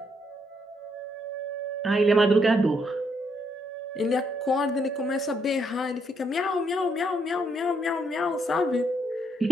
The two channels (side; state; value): both; normal; correlation 0.75